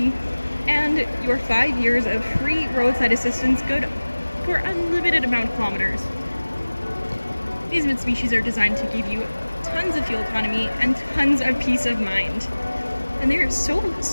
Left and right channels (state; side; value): inverted; both; correlation -1.00